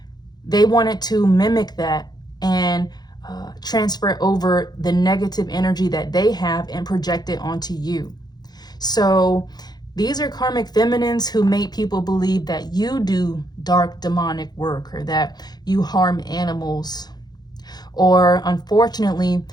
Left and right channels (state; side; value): late; right; 0.20 ms